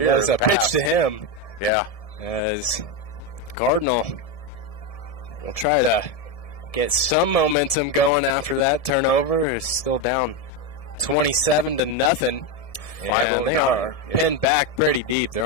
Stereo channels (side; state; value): right; late; 1.7 ms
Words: a pitch to him. Yeah. As Cardinal will try to get some momentum going after that turnover. It's still down 27-0. And they are pinned back pretty deep.